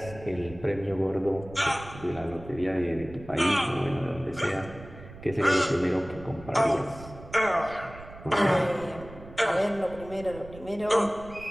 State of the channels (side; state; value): right; noise; rumble, 16 dB below the sound